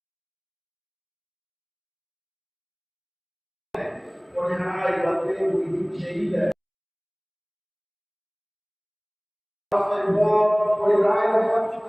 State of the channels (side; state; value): both; identical; correlation 1.00